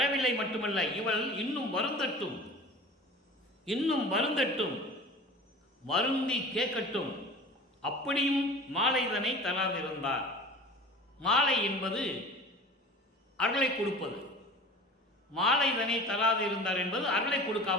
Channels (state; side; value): normal; both; correlation 0.38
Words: மட்டுமல்ல, இவள் இன்னும் வருந்தட்டும், இன்னும் வருந்தட்டும், வருந்தி கேட்கட்டும், அப்படியும் மாலைதனை தராதிருந்தார். மாலை என்பது அருளை கொடுப்பது, மாலைதனை தராதிருந்தார் என்பது அருளை